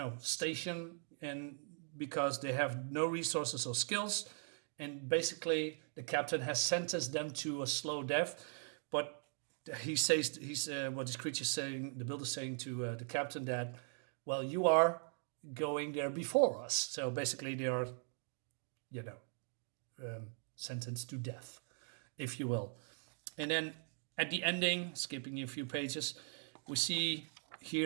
station, and because they have no resources or skills." And basically, the captain has sentenced them to a slow death. But he's what this creature saying, the builder saying to the captain that, well, you are going there before us. So basically, they are, sentenced to death, if you will. And then at the ending, skipping a few pages, we see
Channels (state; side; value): silent; left; 51 dB below the other